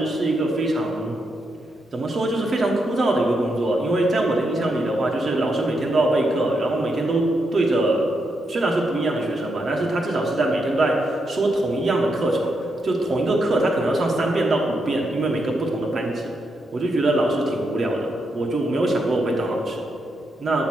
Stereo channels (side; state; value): both; normal; correlation 0.82